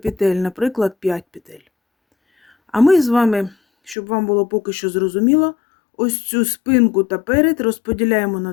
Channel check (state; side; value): drops out; right; at 4.0 s